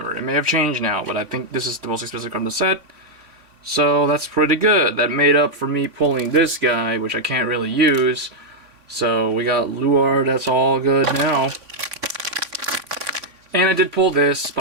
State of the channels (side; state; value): left; late; 3.5 ms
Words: it may have changed now, but I think this is the most expensive card in the set. So that's pretty good. That made up for me pulling this guy, which I can't really use. So we got Luard, that's all good now. And I did pull this,